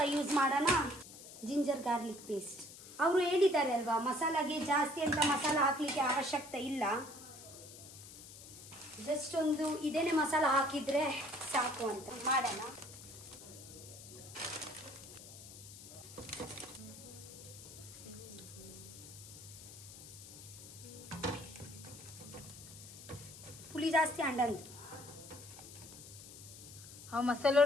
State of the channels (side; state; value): left; noise; hiss, 15 dB below the sound